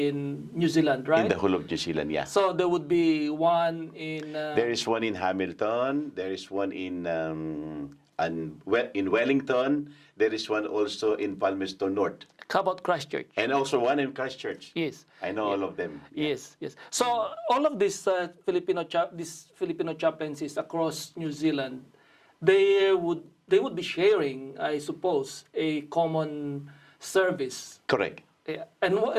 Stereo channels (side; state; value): both; identical; correlation 1.00